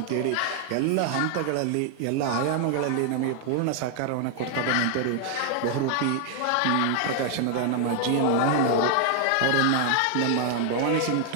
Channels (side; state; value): both; different; correlation 0.00